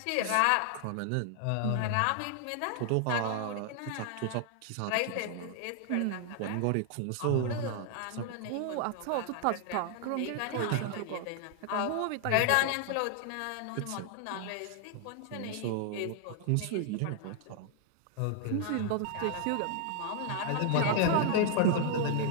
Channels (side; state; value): both; different; correlation 0.00